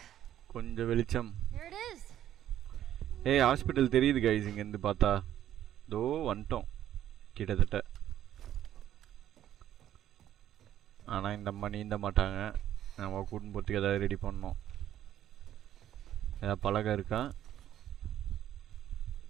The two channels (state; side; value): quieter; left; 11.6 dB